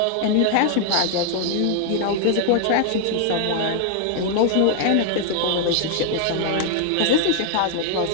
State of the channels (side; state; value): both; different; correlation 0.00